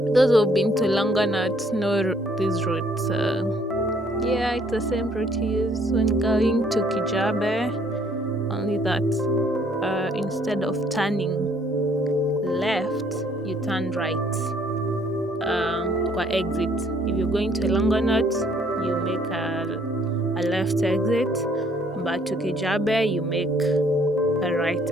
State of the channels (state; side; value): normal; both; correlation 0.64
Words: Those who've been to Longonot know these routes. Yeah, it's the same route you use when going to Kijabe, only that instead of turning left, you turn right. Kwa exit. If you're going to Longonot, you make a left exit, but to Kijabe, you make a right